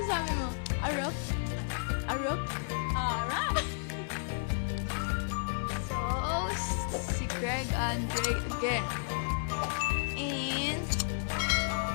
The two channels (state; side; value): silent; right; digital silence